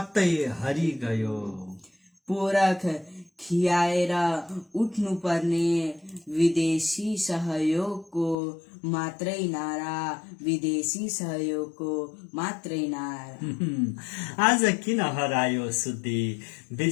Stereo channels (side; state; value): right; drops out; at 8.3 s